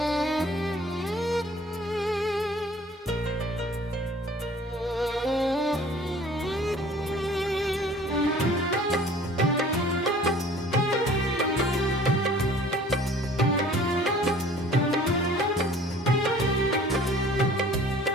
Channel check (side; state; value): both; normal; correlation 0.50